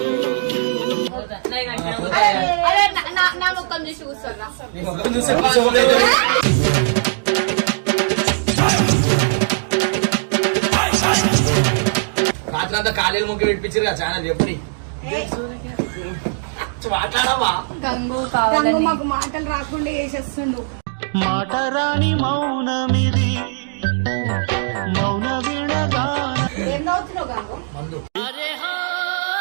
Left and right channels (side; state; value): left; silent; digital silence